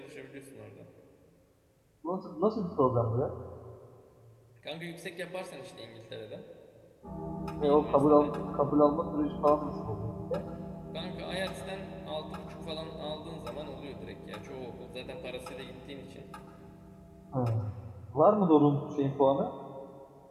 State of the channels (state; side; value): identical; both; correlation 1.00